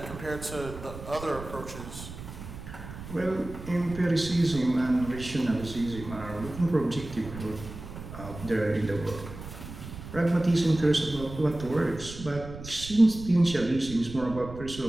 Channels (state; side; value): noise; right; rumble, 12 dB below the sound